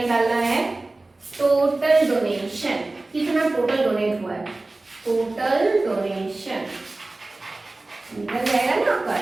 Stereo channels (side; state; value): left; quieter; 3.0 dB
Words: है? टोटल डोनेशन, कितना टोटल डोनेट हुआ है? टोटल डोनेशन निकल जाएगा ना आपका।